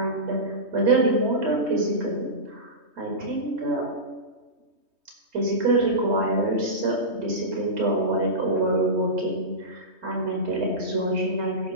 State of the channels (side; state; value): left; late; 3.2 ms